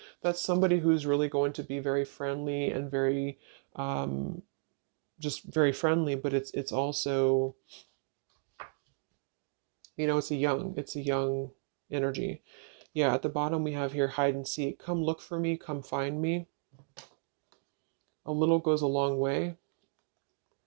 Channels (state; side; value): silent; left; digital silence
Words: that's somebody who's really going to be very friendly and very, um, just very friendly. But it's also, it's a young energy. Yeah, at the bottom we have here hide and seek. Come look for me, come find me. A little goes a long way.